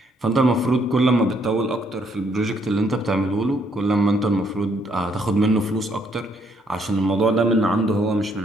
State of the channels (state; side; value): normal; both; correlation 0.70